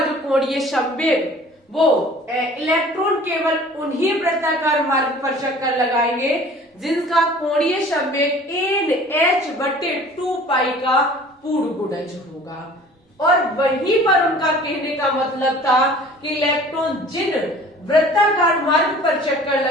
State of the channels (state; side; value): normal; both; correlation 0.48